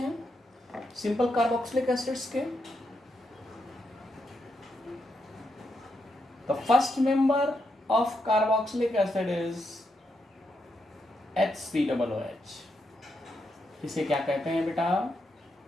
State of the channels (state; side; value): normal; both; correlation 0.82